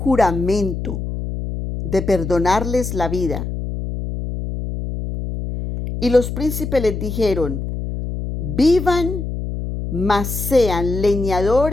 de perdonarles la vida. Y los príncipes les dijeron: vivan, mas sean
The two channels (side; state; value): left; noise; hum, 5 dB below the sound